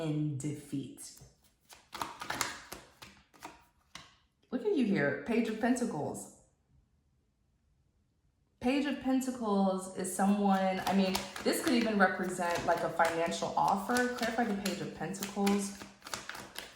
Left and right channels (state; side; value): identical; both; correlation 1.00